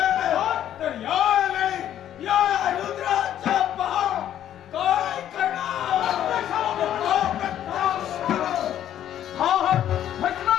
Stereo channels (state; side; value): quieter; right; 11.1 dB